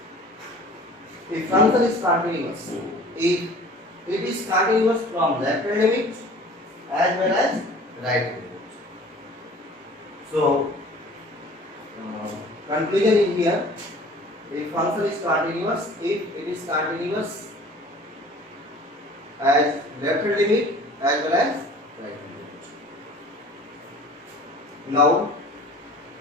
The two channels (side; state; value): both; normal; correlation 0.47